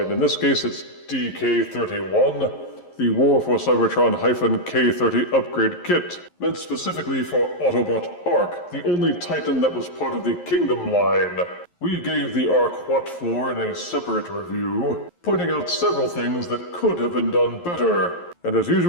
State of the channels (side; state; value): right; late; 11 ms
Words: In this case, it's DK-31, the War for Cybertron-K30 upgrade kit, meant specifically for Autobot Ark, the only Titan that was part of the Kingdom line. We gave the Ark what for in a separate review, pointing out several things that could have been done better. And as